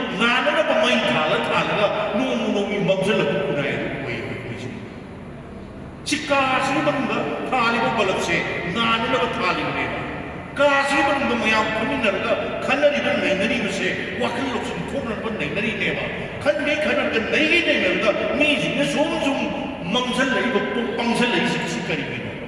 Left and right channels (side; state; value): both; identical; correlation 1.00